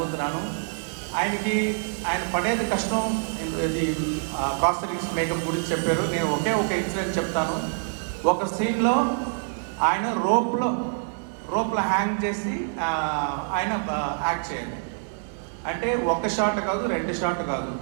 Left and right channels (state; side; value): silent; left; 61 dB below the other